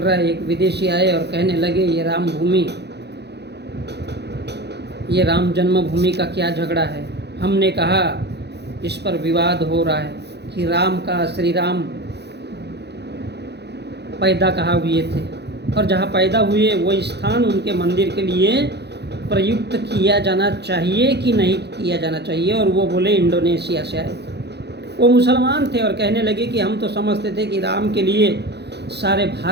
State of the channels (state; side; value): late; left; 0.49 ms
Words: है। एक विदेशी आए और कहने लगे ये राम जन्मभूमि का क्या झगड़ा है। हमने कहा इस पर विवाद हो रहा है कि श्री राम पैदा कहाँ हुए थे और जहाँ पैदा हुए वो स्थान उनके मंदिर के लिए प्रयुक्त किया जाना चाहिए कि नहीं किया जाना चाहिए। और वो बोले इंडोनेशिया से आए थे, वो मुसलमान थे और कहने लगे कि हम तो समझते थे कि राम के लिए सारे